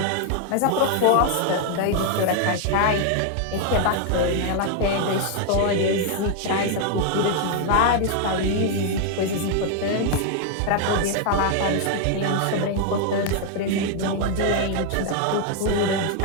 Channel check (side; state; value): both; different; correlation 0.00